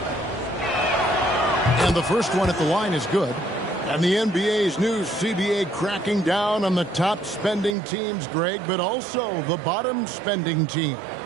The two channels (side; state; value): left; drops out; at 7.8 s